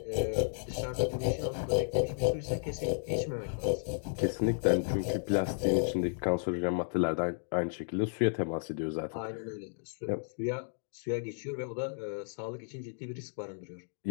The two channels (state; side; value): silent; right; digital silence